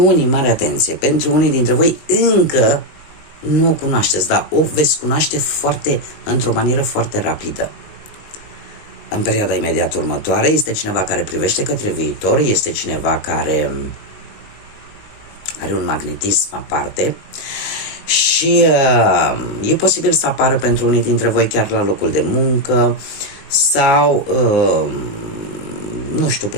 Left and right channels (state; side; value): late; right; 19 ms